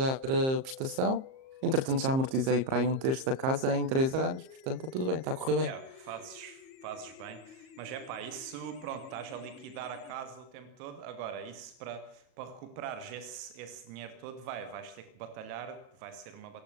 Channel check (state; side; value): late; left; 38 ms